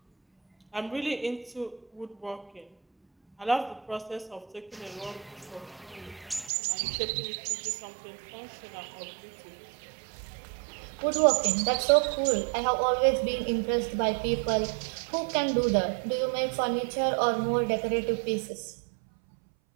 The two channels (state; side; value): drops out; left; at 6.5 s